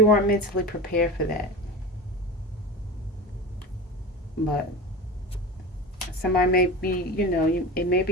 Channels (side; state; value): both; normal; correlation 0.30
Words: weren't mentally prepared for that. But somebody may be, it may